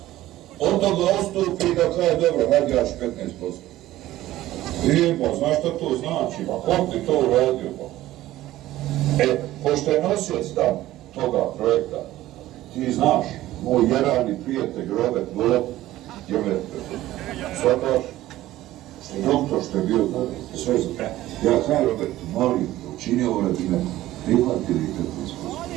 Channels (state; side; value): quieter; left; 15.3 dB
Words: on da ga ostupi i da kaže, dobro, hajde jaš 15%. I pa, znaš šta to znači, pa kom ti to uradio, pa? Pošto je nosioc tam toga projekta, ti znaš, moj jerani prijatelj Robert Golob, je me shvataš, što je doktor, što je bio sve za... Ja kaj Robert, molim, učini ovo radi me, prihvatili 15%.